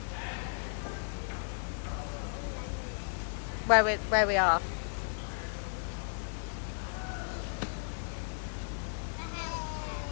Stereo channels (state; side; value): silent; right; 55 dB below the other